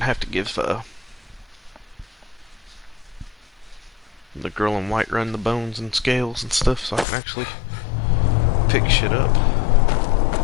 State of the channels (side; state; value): right; drops out; at 7.1 s